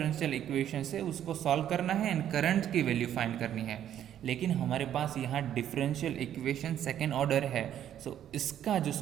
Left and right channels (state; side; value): quieter; left; 10.6 dB